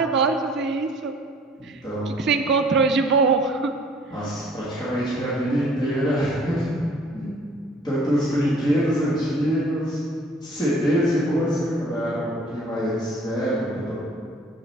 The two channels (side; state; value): both; normal; correlation 0.54